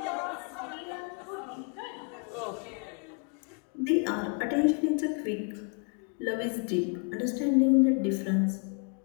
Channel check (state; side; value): quieter; right; 38.4 dB